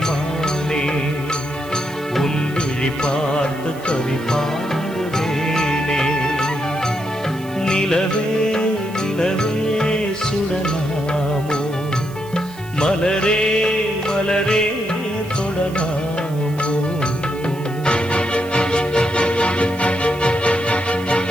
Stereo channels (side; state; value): right; noise; hiss, 21 dB below the sound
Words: மானே உன் விழி பார்த்து கவி பாடுவேனே நிலவே நிலவே சுடலாமோ மலரே மலரே தொடலாமோ